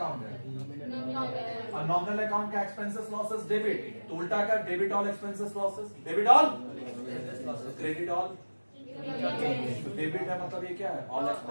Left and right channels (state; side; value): inverted; both; correlation -1.00